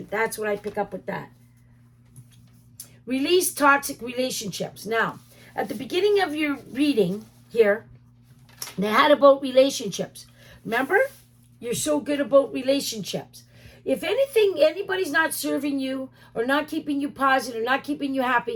That's what I pick up with that. Release toxic relationships. Now, at the beginning of your reading here, they had about relationships. Remember? You're so good about relationships. If anybody's not serving you or not keeping you positive or not keeping you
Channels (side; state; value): both; identical; correlation 1.00